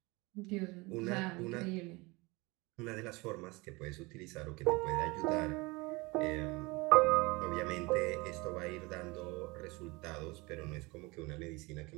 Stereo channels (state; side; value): quieter; left; 24.6 dB